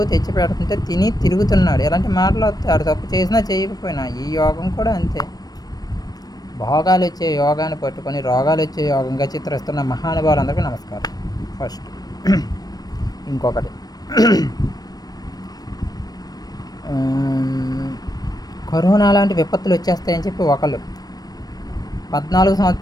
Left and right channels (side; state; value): right; late; 0.19 ms